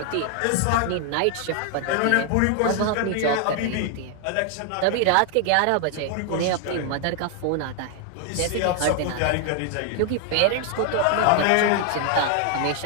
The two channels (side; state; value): both; different; correlation 0.00